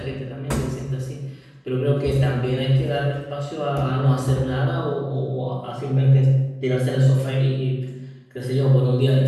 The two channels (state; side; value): identical; both; correlation 1.00